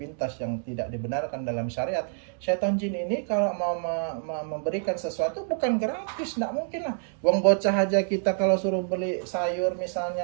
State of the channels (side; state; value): left; silent; 60 dB below the other